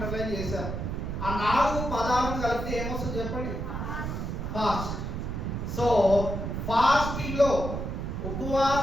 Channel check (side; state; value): right; noise; rumble, 4 dB below the sound